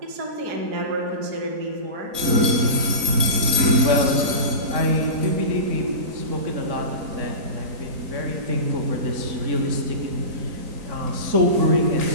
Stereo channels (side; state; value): left; late; 3.9 ms